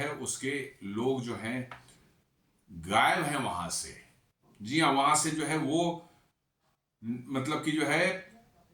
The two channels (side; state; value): both; identical; correlation 1.00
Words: उसके लोग जो हैं गायब हैं वहां से। जी हाँ, वहां से जो है वो मतलब कि जो है